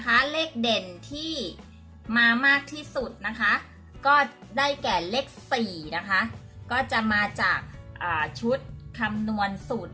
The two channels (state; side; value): identical; both; correlation 1.00